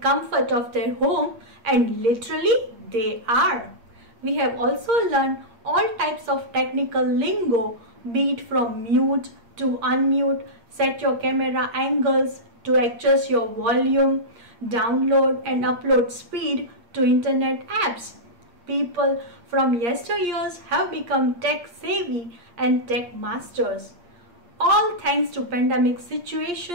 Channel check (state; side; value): late; left; 8.6 ms